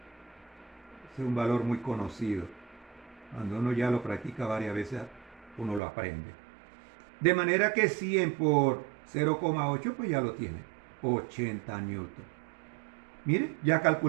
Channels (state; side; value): drops out; left; at 5.8 s